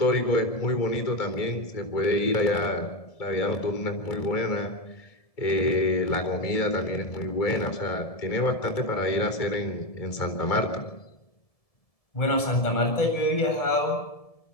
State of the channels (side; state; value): right; late; 1.7 ms